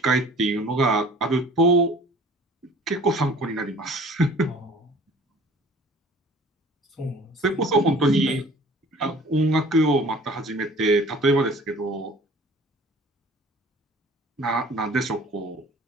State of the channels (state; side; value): normal; both; correlation 0.48